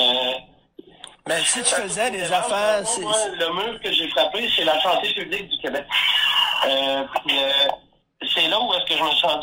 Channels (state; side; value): identical; both; correlation 1.00